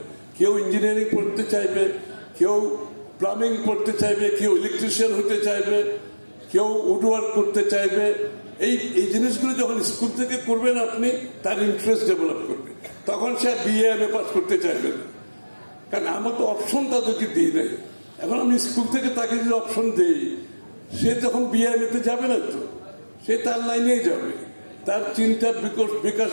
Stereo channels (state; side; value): inverted; both; correlation -1.00